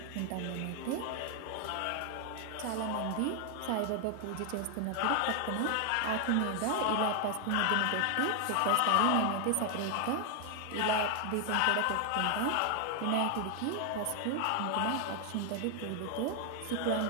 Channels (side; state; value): both; different; correlation 0.00